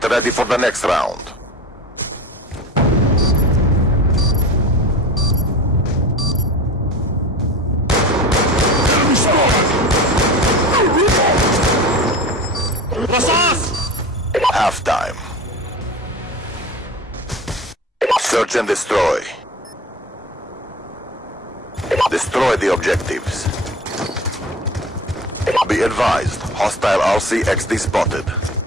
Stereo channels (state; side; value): normal; both; correlation 0.34